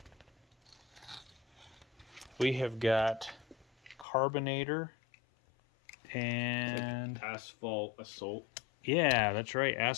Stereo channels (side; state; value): right; drops out; at 4.0 s